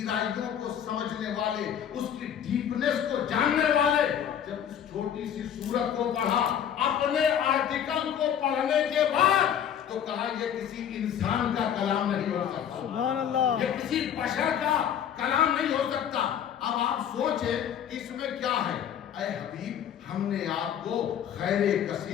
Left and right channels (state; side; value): quieter; right; 9.2 dB